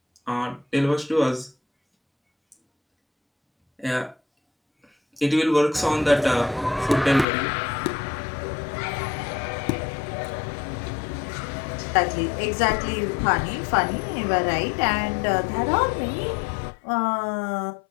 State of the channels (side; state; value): right; drops out; at 7.2 s